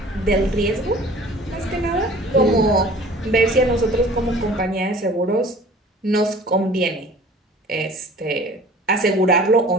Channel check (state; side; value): normal; both; correlation 0.46